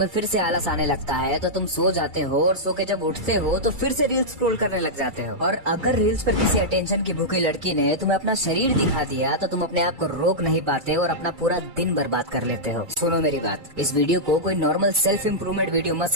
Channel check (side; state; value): left; late; 2.3 ms